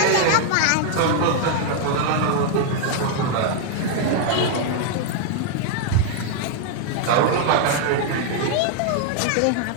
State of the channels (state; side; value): different; both; correlation 0.00